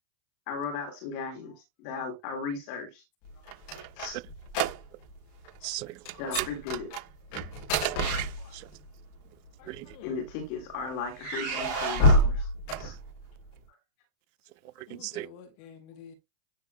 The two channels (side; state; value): right; late; 34 ms